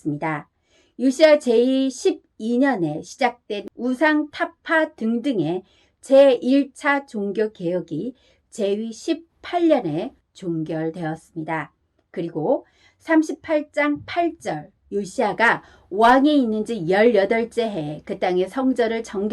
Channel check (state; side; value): identical; both; correlation 1.00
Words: 요시야 제12년에 시작된 우상 타파 등등의 제1차 종교개혁이 제위 18년에 종결되었습니다. 그리고 38장 8절 요시야가 왕에 있는 지 18째 해에 그 땅의 성전을